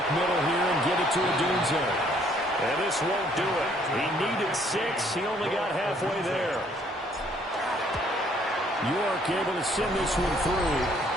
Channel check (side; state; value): both; normal; correlation 0.64